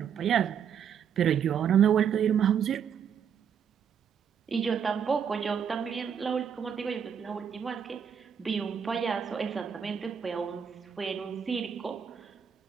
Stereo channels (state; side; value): quieter; left; 7.8 dB